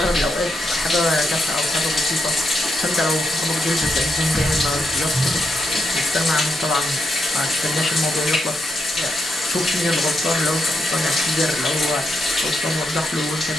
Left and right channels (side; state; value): both; normal; correlation 0.82